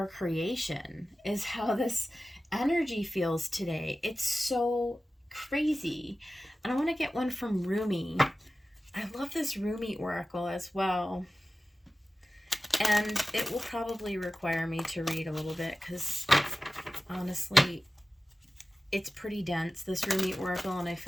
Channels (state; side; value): normal; both; correlation 0.96